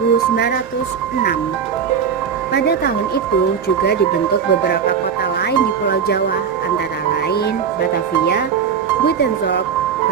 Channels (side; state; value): left; quieter; 7.1 dB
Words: Pada tahun itu juga dibentuk beberapa kota lain di Pulau Jawa, antara lain Batavia, Buitenzorg,